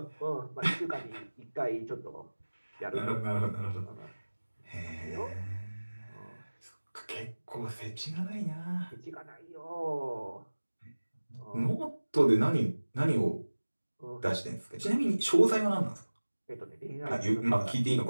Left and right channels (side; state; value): both; inverted; correlation -1.00